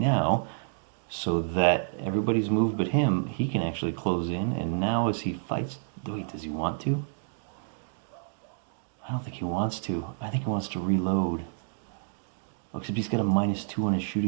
So that everybody's moved but him, he can actually close in, and now as he fights... Wait, does he want to? I don't think he wants to. I think he wants to reload. Oh, except he's got a -2 on his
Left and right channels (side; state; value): left; silent; digital silence